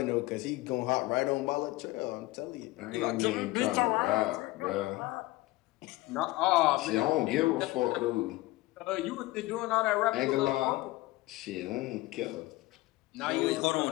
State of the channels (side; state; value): right; quieter; 19.6 dB